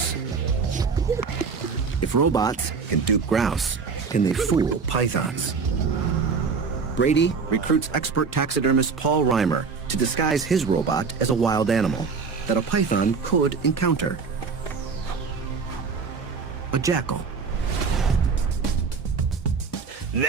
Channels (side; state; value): left; quieter; 5.2 dB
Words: If robots can dupe grouse, can they fool pythons? Brady recruits expert taxidermist Paul Reimer to disguise his robot as a wild animal that a python could encounter. A jackal.